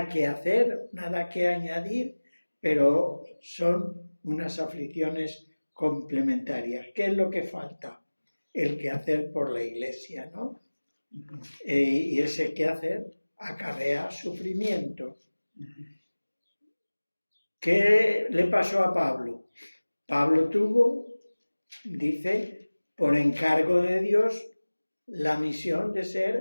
que hacer, nada que añadir, pero son unas aflicciones complementarias. ¿Qué es lo que falta? El quehacer por la iglesia, ¿no? Y ese quehacer acarrea sufrimiento. ¿Qué le pasó a Pablo? Pablo tuvo, dice, por encargo de Dios, la misión de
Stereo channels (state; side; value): inverted; both; correlation -1.00